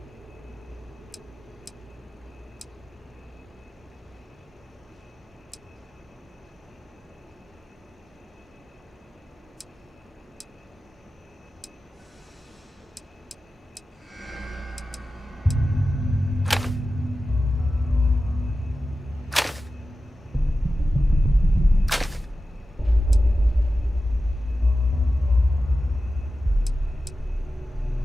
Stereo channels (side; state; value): both; normal; correlation 0.93